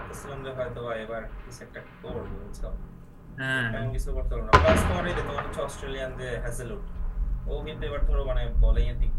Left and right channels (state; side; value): identical; both; correlation 1.00